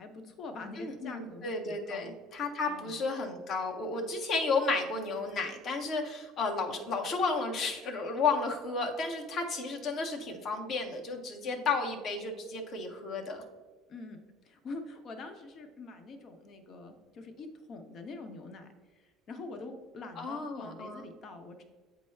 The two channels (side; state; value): right; quieter; 3.6 dB